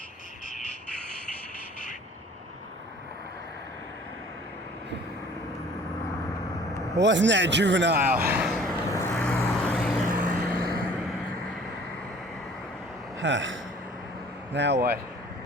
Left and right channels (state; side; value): normal; both; correlation 0.51